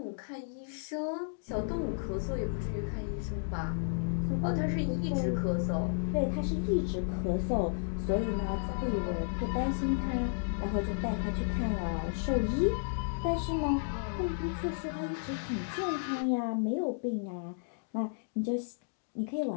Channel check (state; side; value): silent; right; digital silence